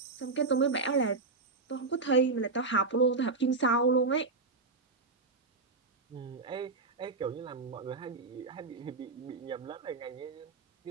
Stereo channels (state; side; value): quieter; left; 3.9 dB